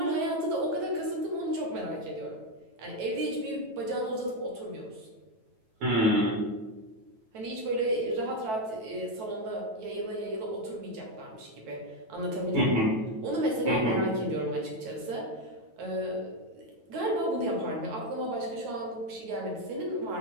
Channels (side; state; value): left; late; 9.2 ms